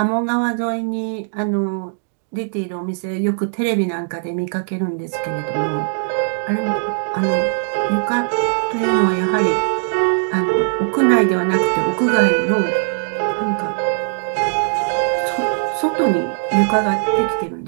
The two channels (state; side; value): silent; left; digital silence